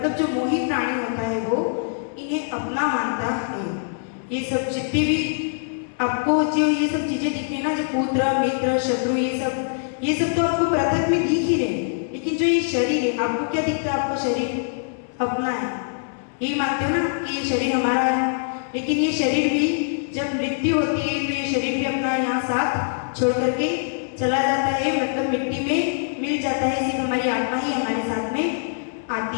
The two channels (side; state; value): right; silent; 63 dB below the other